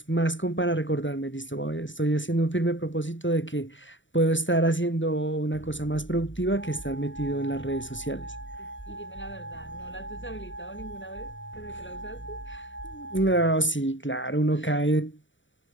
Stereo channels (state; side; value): late; right; 0.55 ms